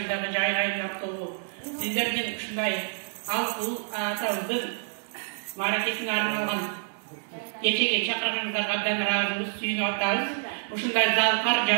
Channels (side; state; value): left; silent; digital silence